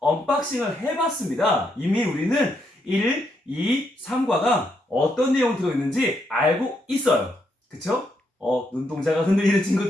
해봤습니다. 이미 우리는 1, 2, 3과가 어떤 내용 들어있는지 알고 있어요. 그쵸? 눈동자가 흔들리는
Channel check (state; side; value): normal; both; correlation 0.78